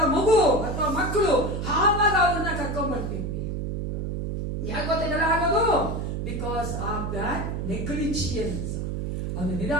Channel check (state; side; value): noise; right; hum, 3 dB below the sound